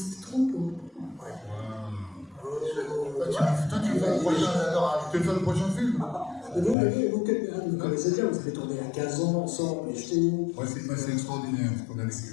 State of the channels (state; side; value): drops out; right; at 6.8 s